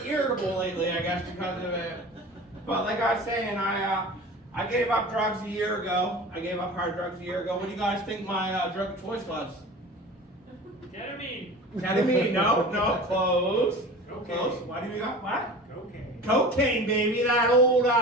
irritable lately, I guess, because of it. But like I was saying, I gave up drugs a year ago. I gave up hard drugs a year ago. What do you guys think my drug of choice was? Ketamine? No, close. Close. What do you got? What? Cocaine, baby. That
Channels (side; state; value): both; normal; correlation 0.37